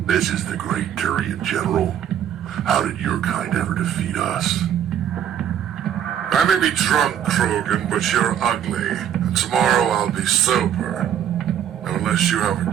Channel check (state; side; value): quieter; left; 9.8 dB